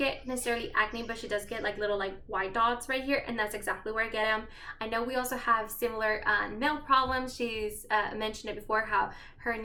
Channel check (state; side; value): identical; both; correlation 1.00